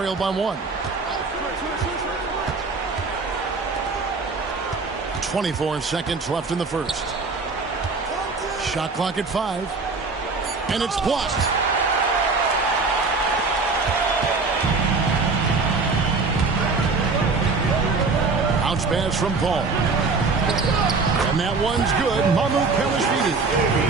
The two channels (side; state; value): left; quieter; 4.2 dB